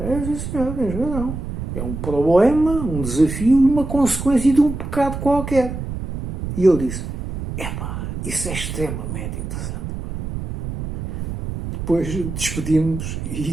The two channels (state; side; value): noise; right; rumble, 6 dB below the sound